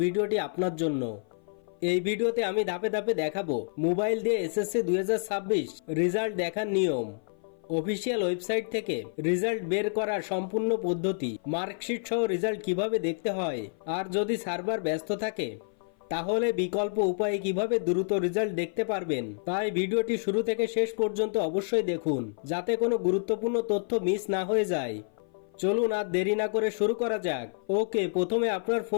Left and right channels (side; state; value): right; silent; 56 dB below the other